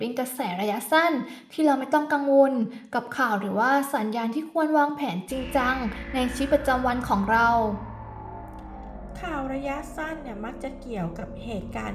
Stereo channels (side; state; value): both; identical; correlation 1.00